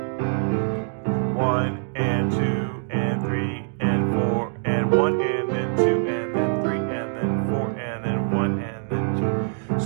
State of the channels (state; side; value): silent; left; digital silence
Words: 1 and 2 and 3 and 4 and 1 and then 2 and then 3 and then 4 and then 1 and then 2.